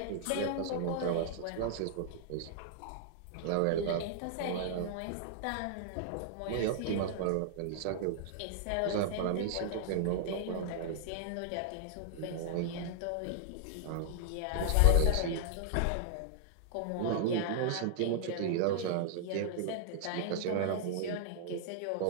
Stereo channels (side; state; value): both; different; correlation -0.01